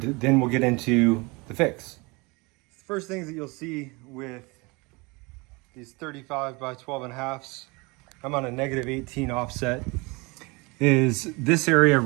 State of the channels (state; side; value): quieter; left; 26.7 dB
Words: then we'll get into the fix. The first things that you'll see with these 35 by 12.5s, I'm on a -18 offset, is this area